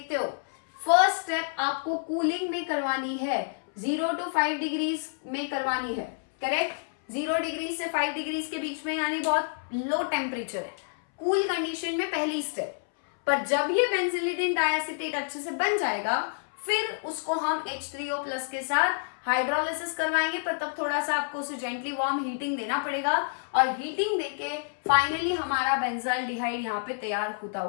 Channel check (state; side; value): silent; right; 59 dB below the other